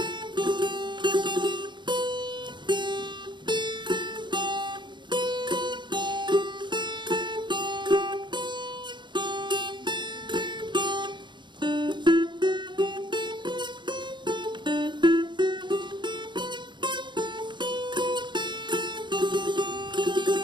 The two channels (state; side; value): late; left; 0.22 ms